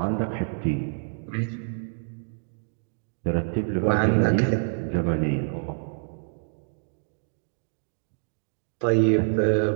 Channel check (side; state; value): left; silent; digital silence